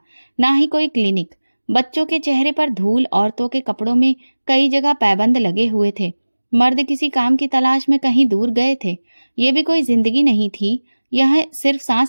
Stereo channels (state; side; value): inverted; both; correlation -1.00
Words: ना ही कोई क्लिनिक। बच्चों के चेहरे पर धूल, औरतों के कपड़ों में कई जगह पैबंद लगे हुए थे। मर्द किसी काम की तलाश में कहीं दूर गए थे। ये भी कोई जिंदगी नहीं थी। यह सिर्फ